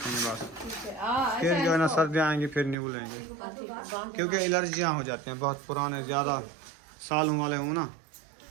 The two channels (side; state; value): left; drops out; at 2.8 s